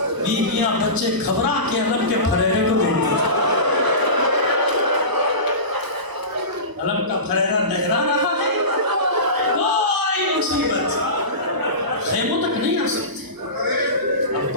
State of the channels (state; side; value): late; left; 1.0 ms